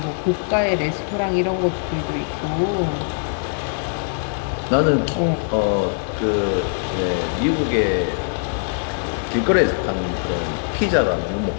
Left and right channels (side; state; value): right; silent; digital silence